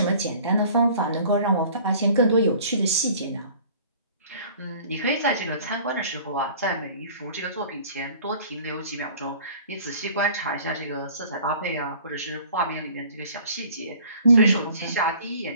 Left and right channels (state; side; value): inverted; both; correlation -0.50